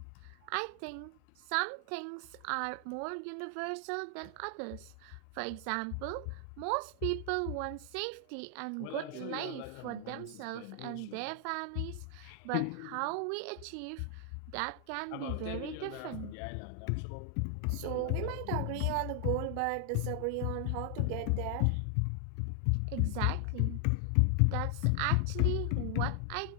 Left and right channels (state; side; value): different; both; correlation 0.00